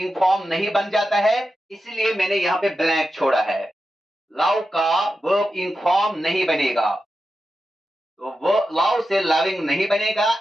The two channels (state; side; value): normal; both; correlation 0.90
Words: फॉर्म नहीं बन जाता है, इसलिए मैंने यहां पे ब्लैंक छोड़ा है। लव का वर्ब इन फॉर्म नहीं बनेगा, तो वो लव से लविंग नहीं बनेगा